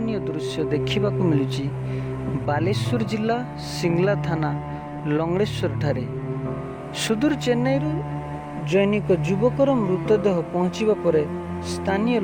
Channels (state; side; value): identical; both; correlation 1.00